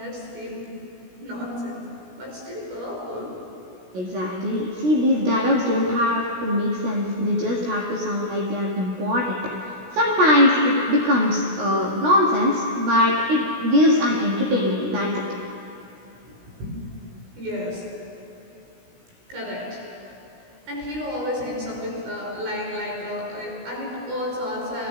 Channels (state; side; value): late; left; 17 ms